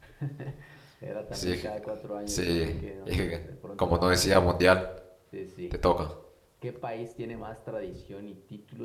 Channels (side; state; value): both; identical; correlation 1.00